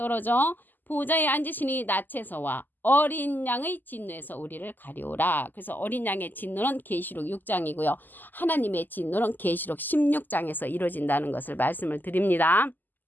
보좌에 앉으시니 낯에서와 어린 양의 진노에서 우리를 가리오라. 그래서 어린 양의 진노는 계시록 6장이고요. 하나님의 진노는 계시록 16장에서 이루어진다는 것을 말씀을 드립니다.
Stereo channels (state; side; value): late; right; 0.088 ms